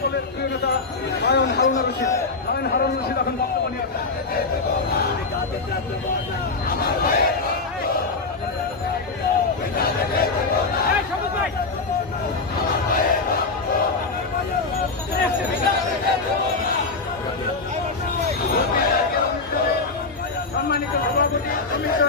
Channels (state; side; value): quieter; right; 3.9 dB